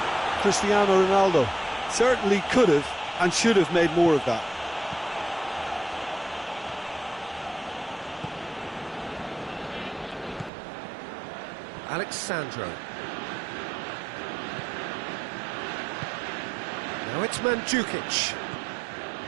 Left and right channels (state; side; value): drops out; left; at 10.5 s